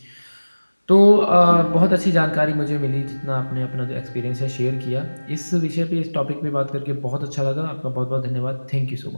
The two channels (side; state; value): both; inverted; correlation -1.00